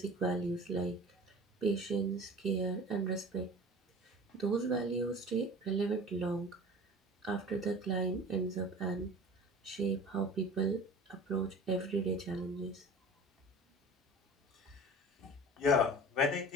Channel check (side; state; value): both; normal; correlation 0.40